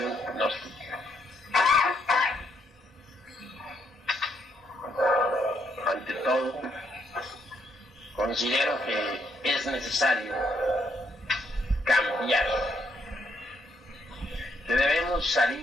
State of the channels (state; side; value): normal; both; correlation 0.74